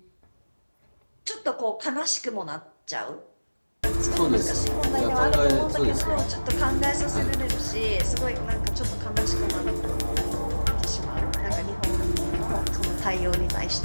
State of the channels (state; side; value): inverted; both; correlation -1.00